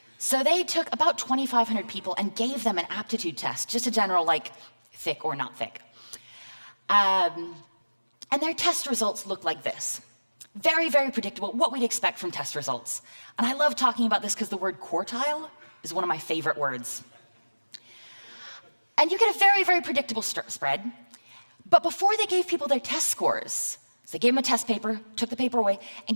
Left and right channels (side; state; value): both; inverted; correlation -1.00